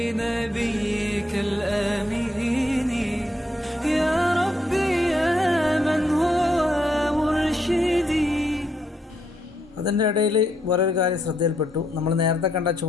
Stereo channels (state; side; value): normal; both; correlation 0.77